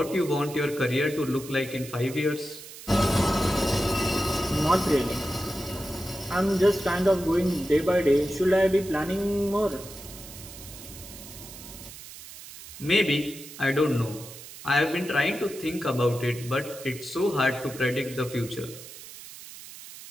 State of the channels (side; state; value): right; noise; hiss, 15 dB below the sound